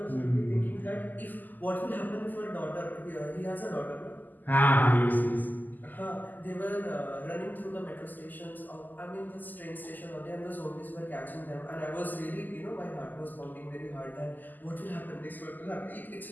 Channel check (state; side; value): late; right; 0.085 ms